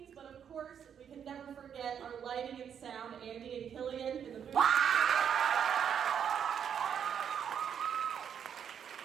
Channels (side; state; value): left; quieter; 8.2 dB